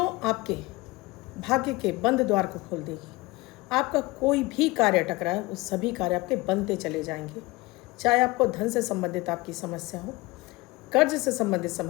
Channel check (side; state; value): right; quieter; 21.8 dB